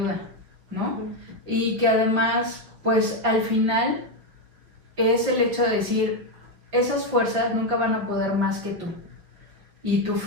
¿no? Y que además, pues al final es el hecho de decir, esas fuerzas nunca van a poder más que tú. Y tu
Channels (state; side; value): late; left; 5.6 ms